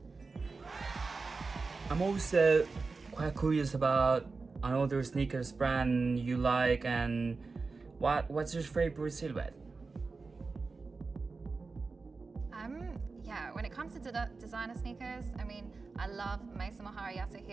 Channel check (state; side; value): quieter; left; 4.1 dB